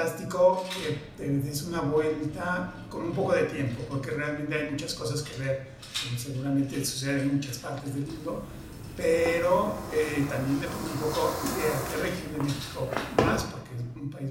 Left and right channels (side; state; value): both; identical; correlation 1.00